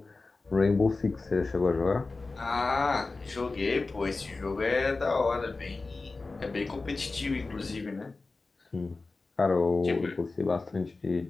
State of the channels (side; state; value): right; quieter; 3.7 dB